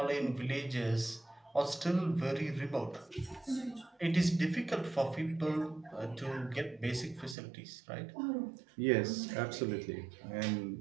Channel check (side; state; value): left; drops out; at 7.4 s